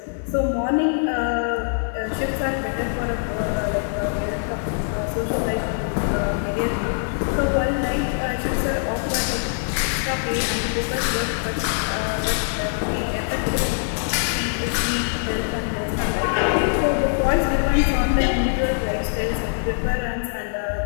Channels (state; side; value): silent; right; digital silence